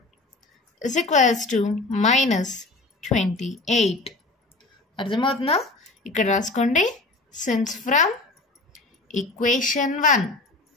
is equals to -28. అర్థమవుతుందా? ఇక్కడ రాసుకోండి, సిన్స్ ఫ్రమ్ ఈక్వేషన్ 1.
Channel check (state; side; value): quieter; right; 3.2 dB